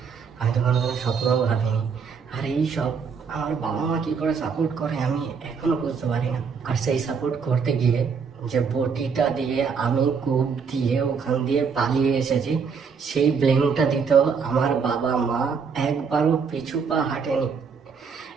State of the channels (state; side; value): quieter; left; 5.8 dB